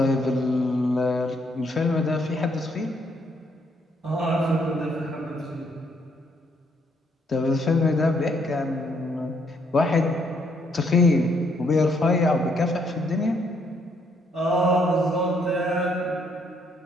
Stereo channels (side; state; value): both; normal; correlation 0.71